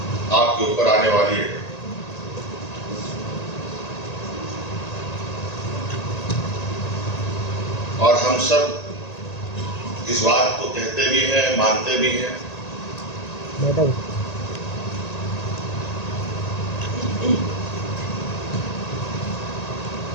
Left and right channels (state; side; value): late; right; 1.9 ms